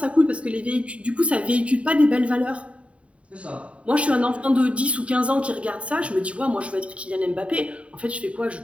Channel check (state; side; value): late; left; 0.063 ms